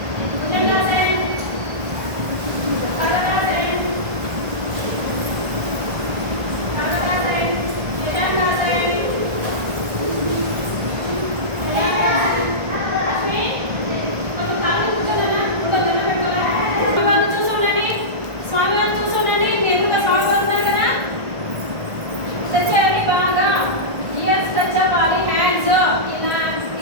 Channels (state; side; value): late; left; 1.5 ms